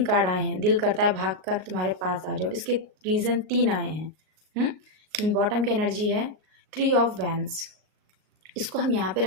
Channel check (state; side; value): late; left; 38 ms